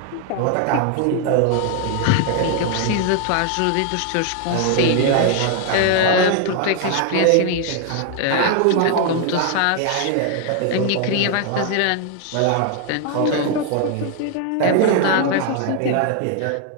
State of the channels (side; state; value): both; different; correlation 0.00